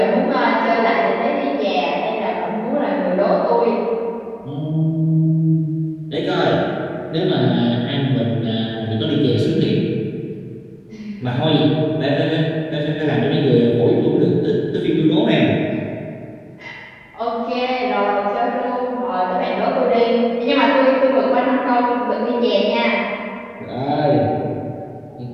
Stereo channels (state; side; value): identical; both; correlation 1.00